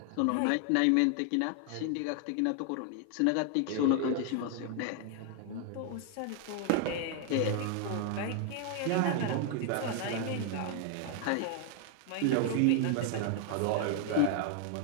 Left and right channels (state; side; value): different; both; correlation 0.00